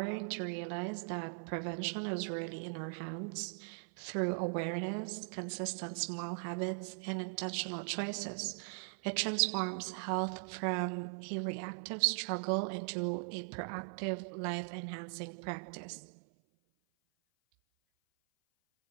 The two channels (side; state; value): left; silent; 52 dB below the other